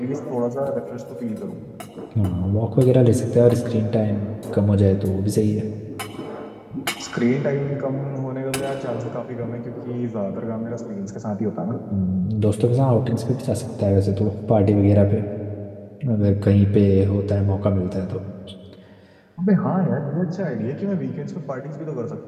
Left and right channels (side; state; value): both; identical; correlation 1.00